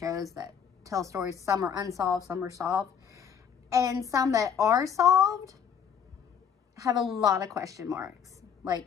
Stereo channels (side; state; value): right; quieter; 7.6 dB